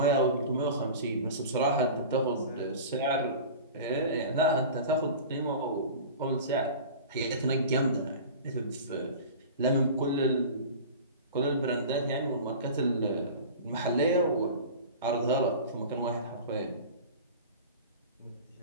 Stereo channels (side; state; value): both; inverted; correlation -0.36